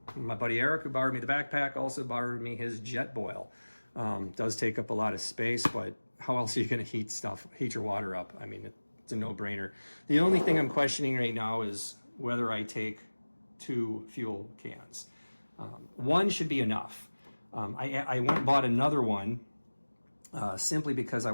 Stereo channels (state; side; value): inverted; both; correlation -1.00